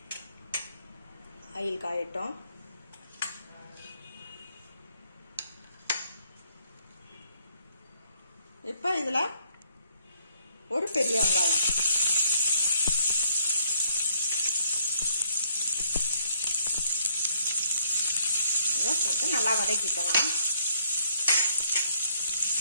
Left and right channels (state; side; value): inverted; both; correlation -0.67